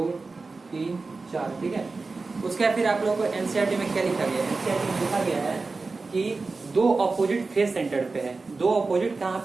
3 4, ठीक है। उसके बाद फिर आप लोगों को एनसीईआरटी में क्या लिखा गया है, एनसीईआरटी में लिखा गया है कि 2 ऑपोजिट फेस सेंटर्ड पे है, 2 ऑपोजिट कहाँ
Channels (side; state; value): left; quieter; 3.9 dB